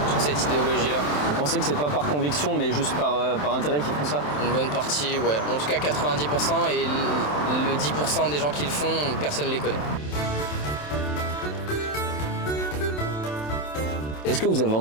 cette idéologie-là. Vous pensez que c'est pas par conviction mais juste par intérêt qu'ils font ça? Une bonne partie, ouais. En tout cas 90% et le 10% des gens qui le font, personne ne les connaît. Est-ce que vous avez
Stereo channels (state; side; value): late; right; 27 ms